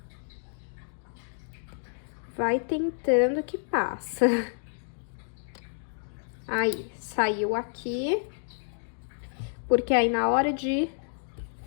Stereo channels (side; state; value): right; silent; digital silence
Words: Vai tentando que passa. Aí, saiu aqui. Porque aí, na hora de